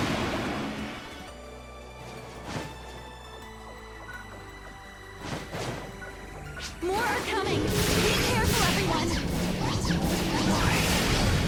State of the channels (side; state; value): both; identical; correlation 1.00